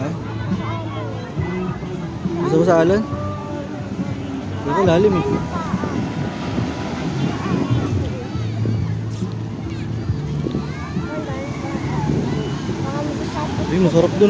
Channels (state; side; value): identical; both; correlation 1.00